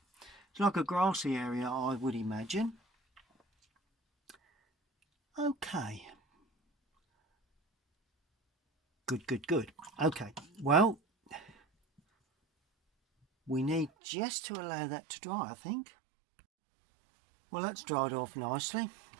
It's like a grassy area, I would imagine. Okay, good. Okay, well, we need just to allow that to dry, I think. Well, that's dried off nicely.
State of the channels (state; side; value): drops out; left; at 13.9 s